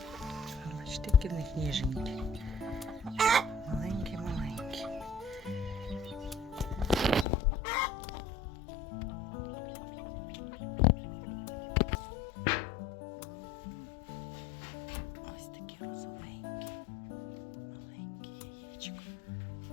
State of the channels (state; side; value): drops out; right; at 7.2 s